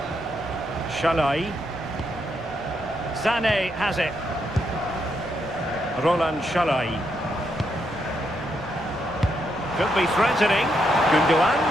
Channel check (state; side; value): noise; left; rumble, 19 dB below the sound